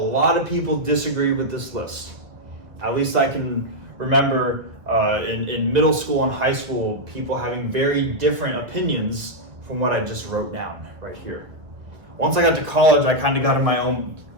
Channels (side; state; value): left; late; 1.6 ms